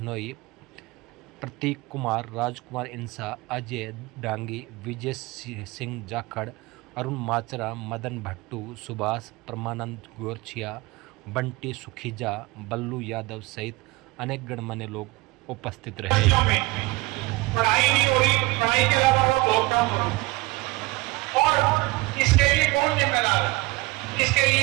प्रतीक कुमार, राजकुमार इंसा, अजय डांगी, विजय सिंह जाखड़, अरुण माचरा, मदन भट्टू, सुभाष, परमानंद गोरछिया, बंटी सुखीजा, बल्लू यादव सहित अनेक गणमान्य लोग उपस्थित रहे। पढ़ाई नहीं हो रही, पढ़ाई के अलावा बहुत काम हो रहा और इसके लिए कौन जिम्मेदार है? इसके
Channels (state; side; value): quieter; left; 22.3 dB